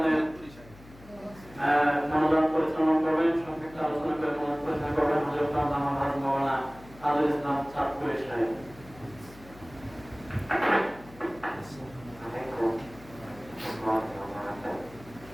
মনোদান পরিচালনা করবেন সংক্ষিপ্ত আলোচনা করে মনোদান পরিচালনা করবেন হযরত মোহাম্মদ মাওলানা আজল ইসলাম চাঁদপুরের সাহেব।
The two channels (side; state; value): left; noise; hum, 21 dB below the sound